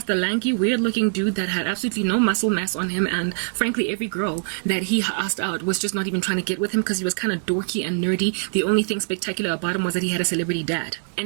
the lanky, weird-looking dude that had absolutely no muscle mass on him, and frankly, every girl that he asked out was just not even trying to get with him because he was kind of dorky and nerdy. The only thing spectacular about him was that he had a celebrity dad.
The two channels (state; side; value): silent; left; 63 dB below the other